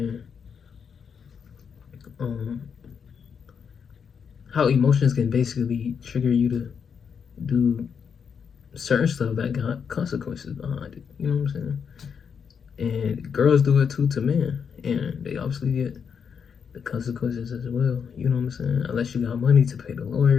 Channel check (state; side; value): quieter; right; 6.8 dB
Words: basically trigger you to do certain stuff that got consequences behind it. You know what I'm saying? And girls do it too to men, and they obviously get the consequences as well. You know what I'm saying? Unless you got money to pay the